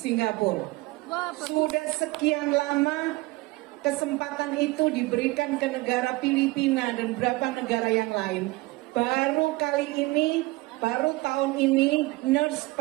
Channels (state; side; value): quieter; left; 21.9 dB